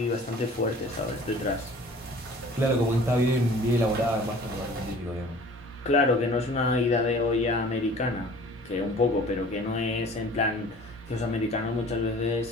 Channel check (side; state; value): both; normal; correlation 0.47